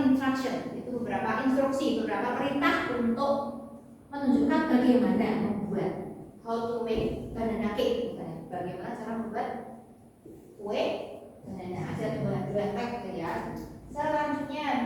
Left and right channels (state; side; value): identical; both; correlation 1.00